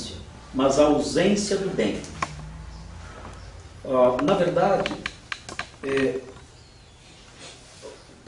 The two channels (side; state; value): both; identical; correlation 1.00